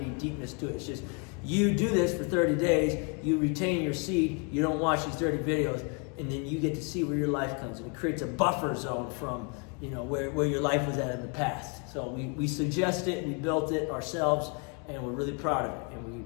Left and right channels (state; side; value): quieter; right; 35.1 dB